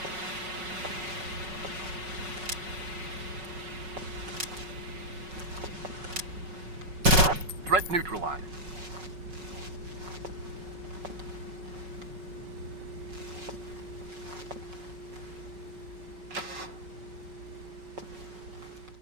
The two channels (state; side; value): late; left; 5.4 ms